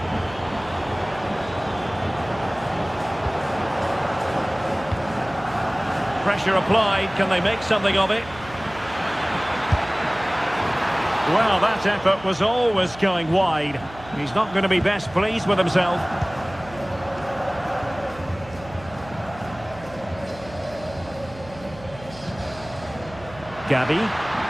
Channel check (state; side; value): noise; right; hum, 18 dB below the sound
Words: Pressure applied. Can they make something of it? Well, that effort was always going wide. He's not going to be best pleased with himself. Gabby.